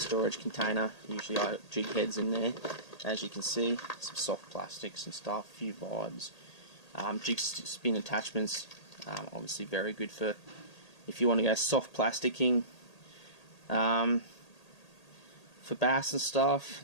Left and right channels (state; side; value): late; right; 1.8 ms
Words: container. Usually I have jig heads in there, as you can see, some soft plastics and stuff, a few vibes, jig spin attachments. Obviously very good for if you want to go soft plasticking for bass and